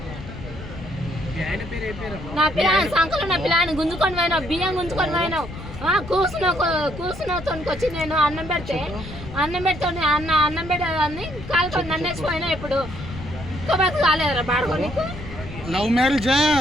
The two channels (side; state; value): left; noise; rumble, 12 dB below the sound